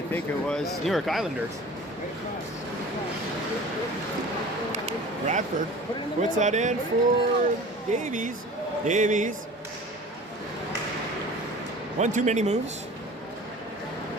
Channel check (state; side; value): normal; both; correlation 0.42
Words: think it was, New York Islanders. Bradford puts that in for Davies. Davies. One too many moves.